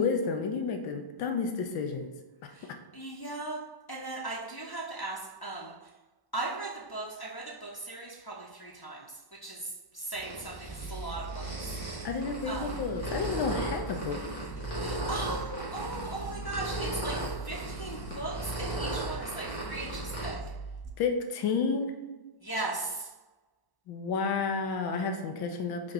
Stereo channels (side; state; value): right; late; 1.1 ms